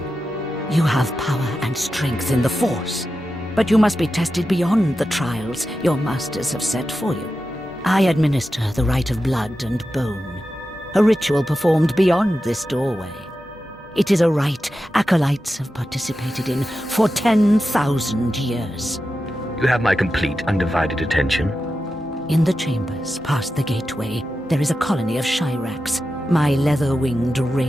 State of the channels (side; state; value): both; normal; correlation 0.91